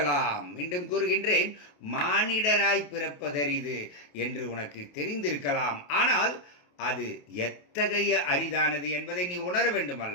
மீண்டும் கூறுகின்றேன், மானிடராய் பிறப்பதரிது என்று உனக்கு தெரிந்திருக்கலாம். ஆனால் அது எத்தகைய அரிதானது என்பதை நீ உணர வேண்டும்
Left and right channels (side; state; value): right; late; 28 ms